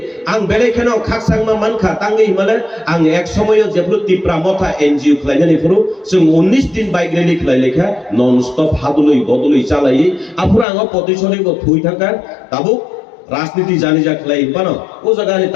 आं बेलेखेनो खाकसांमा मानखा तांगै हिमाले आं एक समयो जेब्लो तिप्रा मथा एनजिओ खालायनानै फुरु जों 19 दिन बाइक रैली खालायलेखा नन स्टप हादुलै बदुलै चालायै आफुरा आं पतिसरिबो थुइ थाका ताबो राजनीति जानि जा खालाय पानो ओ जगानि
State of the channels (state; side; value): drops out; right; at 10.7 s